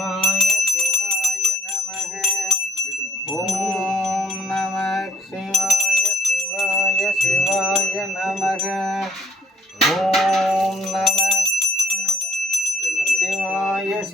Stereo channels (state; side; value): normal; both; correlation 0.63